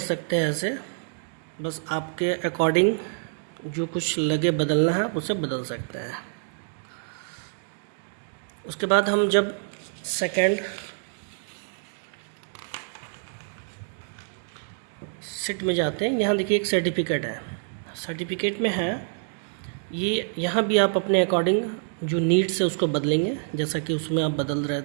हैं ऐसे, बस आपके अकॉर्डिंग जो कुछ लगे बदलना है उसे बदल सकते हैं। उसके बाद हम जब सेकेंड सीट में जाते हैं, यहाँ देखिए एक सर्टिफिकेट है। सर्टिफिकेट में है ये, यहाँ भी आप अपने अकॉर्डिंग जो नीड्स है उसको बदलेंगे, जैसा कि उसमें आप बदल रहे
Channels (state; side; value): silent; left; digital silence